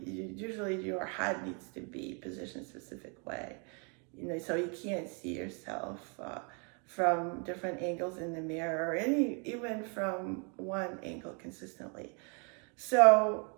your head needs to be positioned a specific way, so you can't see yourself from different angles in the mirror, or even from one angle consistently. So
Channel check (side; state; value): left; quieter; 36.6 dB